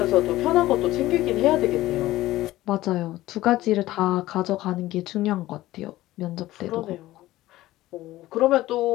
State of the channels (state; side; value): quieter; right; 16.3 dB